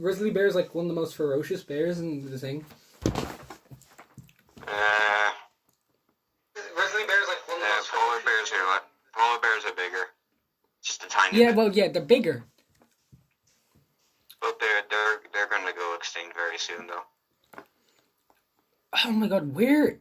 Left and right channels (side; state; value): both; identical; correlation 1.00